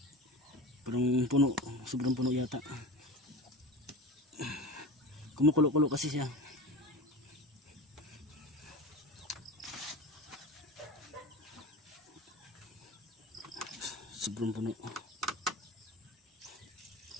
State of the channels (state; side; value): normal; both; correlation 0.31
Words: Parang puno, sobrang puno yata. Kumukulo-kulo kasi siya. Sobrang puno.